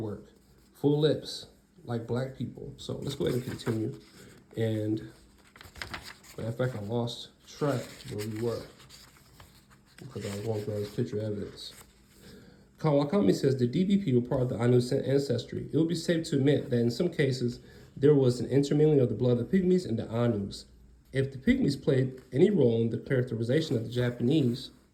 full lips, like Black people. So let's go ahead and continue. And matter of fact, I lost track where we were because I was going through all this picture evidence. Kawakami says the DBP were part of the Ainu ancestry. It would be safe to admit that in some cases, there was an intermingling of the blood of the Pygmies and the Ainus. If the Pygmies played any role in the characterization of the Japanese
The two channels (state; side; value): identical; both; correlation 1.00